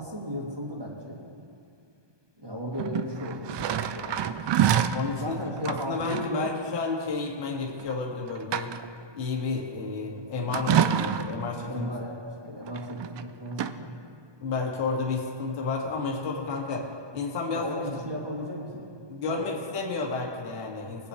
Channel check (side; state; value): left; late; 1.2 ms